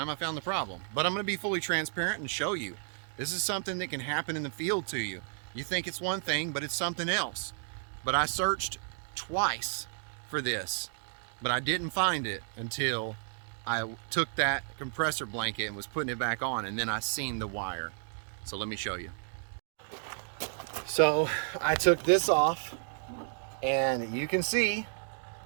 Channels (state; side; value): silent; left; digital silence